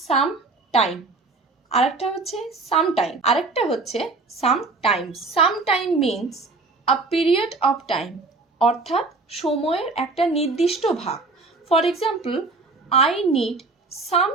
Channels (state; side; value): quieter; left; 3.6 dB